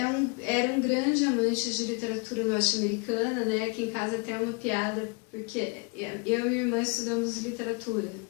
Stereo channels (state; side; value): quieter; right; 30.8 dB